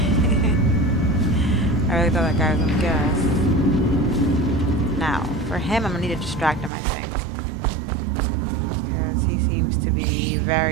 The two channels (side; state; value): left; drops out; at 6.7 s